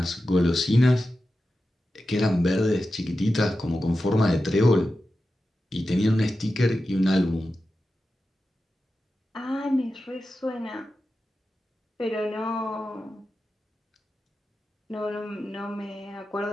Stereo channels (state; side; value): normal; both; correlation 0.92